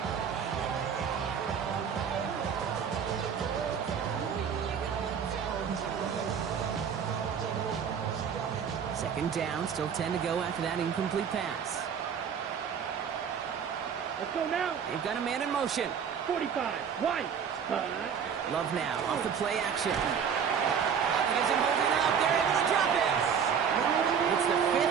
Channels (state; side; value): quieter; left; 7.3 dB